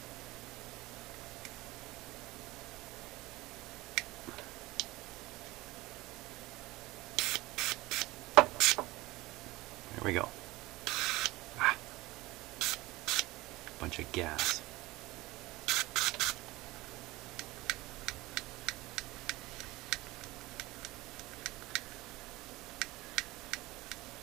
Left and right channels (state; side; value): quieter; left; 19.9 dB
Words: There we go. Ah. Bunch of gas.